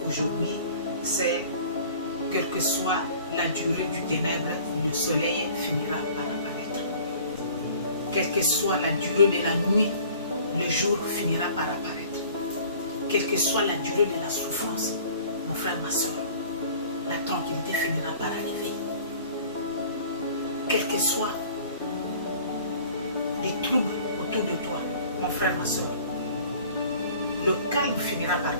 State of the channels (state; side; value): inverted; both; correlation -0.49